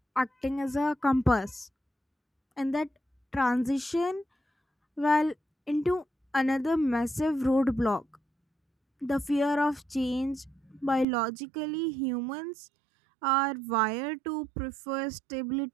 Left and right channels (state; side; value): drops out; left; at 11.1 s